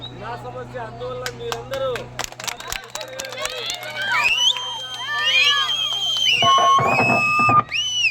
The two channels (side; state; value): both; identical; correlation 1.00